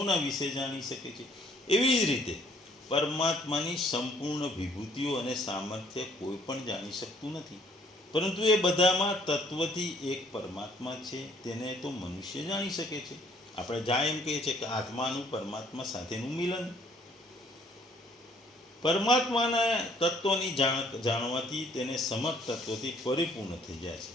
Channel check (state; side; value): normal; both; correlation 0.62